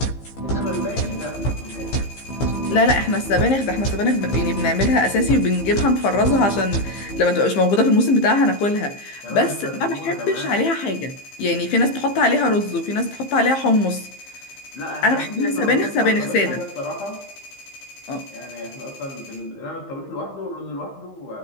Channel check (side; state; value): right; late; 15 ms